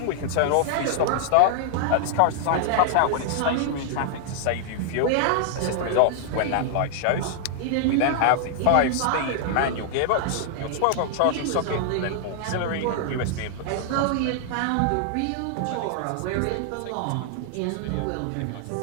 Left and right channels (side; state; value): both; different; correlation 0.00